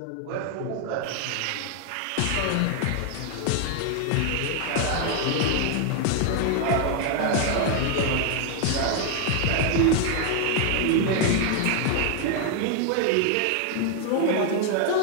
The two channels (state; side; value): different; both; correlation 0.00